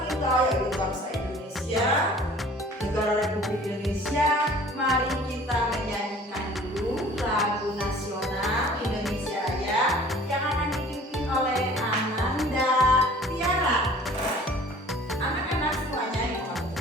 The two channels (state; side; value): normal; both; correlation 0.49